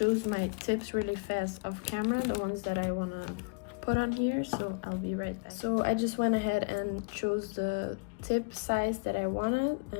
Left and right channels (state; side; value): quieter; right; 33.3 dB